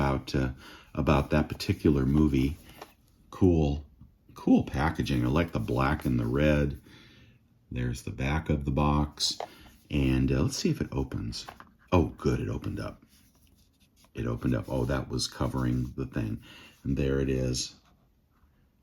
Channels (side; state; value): both; identical; correlation 1.00